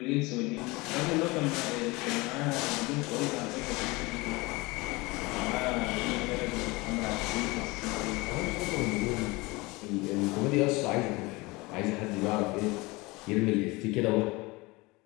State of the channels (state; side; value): quieter; right; 23.6 dB